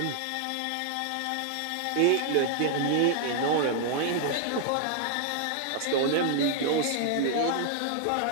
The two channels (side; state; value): both; different; correlation 0.00